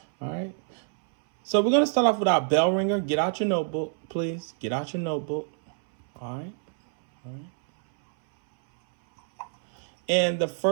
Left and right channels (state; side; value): silent; left; 61 dB below the other